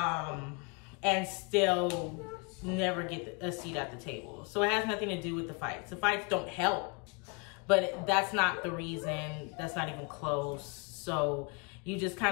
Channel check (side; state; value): right; quieter; 32.4 dB